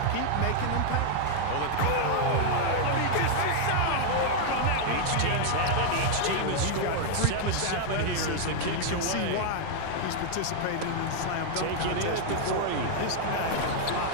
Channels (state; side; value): different; both; correlation 0.00